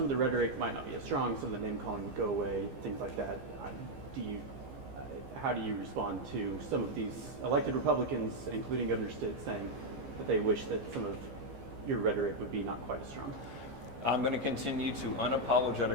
of the rhetoric might not be as strong, some of the name calling would go away, things like that. How do you respond to some of these elected Republicans, including Governor Stitt, saying that they wish that some of your rhetoric would be not quite as strong? I'm going to continue to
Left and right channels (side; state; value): left; late; 15 ms